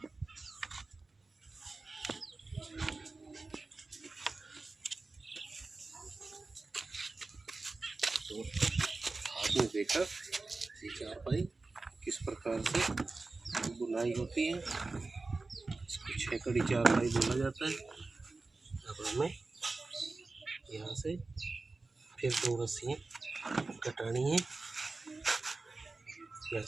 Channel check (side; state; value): left; quieter; 3.6 dB